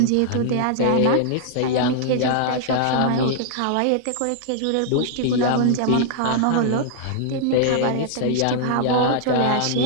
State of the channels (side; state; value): both; different; correlation -0.01